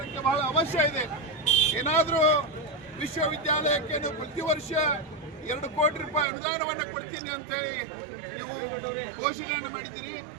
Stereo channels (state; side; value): drops out; left; at 6.2 s